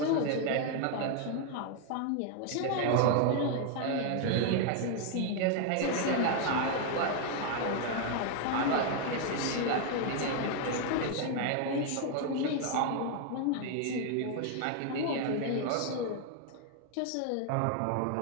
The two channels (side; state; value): both; different; correlation 0.00